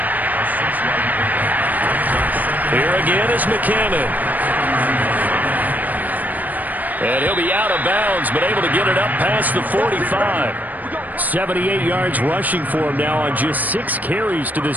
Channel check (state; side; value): late; left; 0.081 ms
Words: Here again is McKinnon. And he'll be out of bounds, but able to get it up past the 45. 78 yards rushing for him now on just 6 carries to